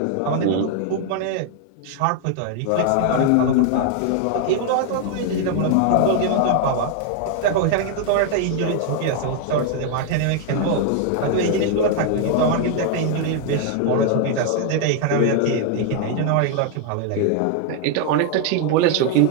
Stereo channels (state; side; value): different; both; correlation 0.00